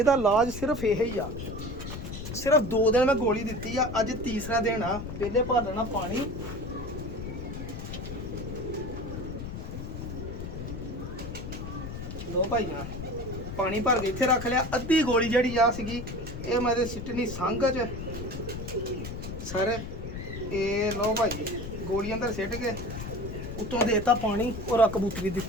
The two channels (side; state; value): left; noise; rumble, 8 dB below the sound